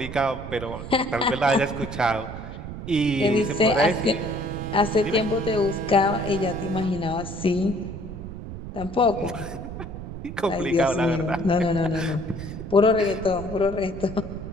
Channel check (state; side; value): noise; right; rumble, 10 dB below the sound